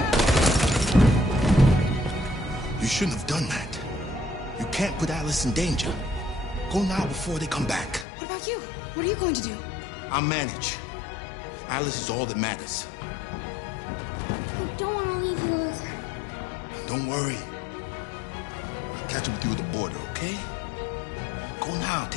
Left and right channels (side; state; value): right; drops out; at 8.1 s